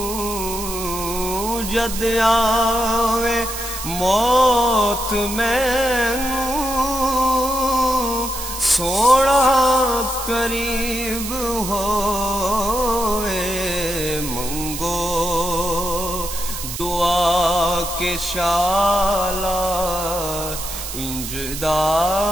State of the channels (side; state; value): right; noise; hiss, 7 dB below the sound